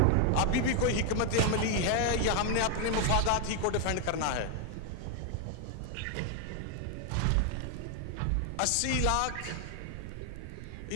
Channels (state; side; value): different; both; correlation 0.00